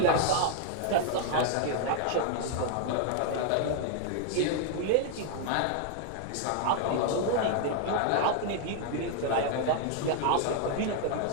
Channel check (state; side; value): different; both; correlation 0.00